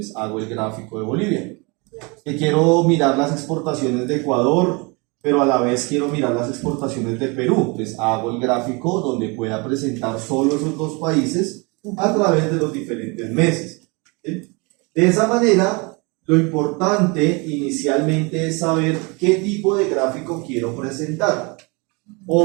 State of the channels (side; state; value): left; quieter; 29.0 dB